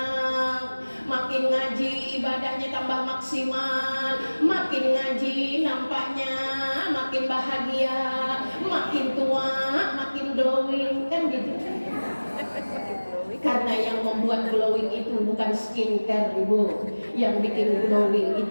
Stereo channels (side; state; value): both; inverted; correlation -1.00